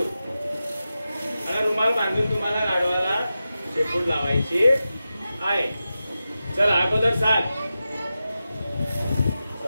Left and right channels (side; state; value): both; inverted; correlation -0.92